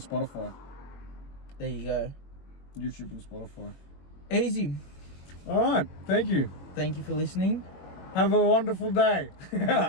There you go. YouTube and Spotify. Easy. All right. Thank you. Thank you for listening. Have a wonderful day. Have a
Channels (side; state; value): right; late; 21 ms